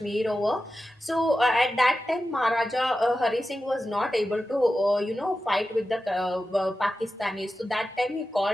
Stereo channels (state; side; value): normal; both; correlation 0.92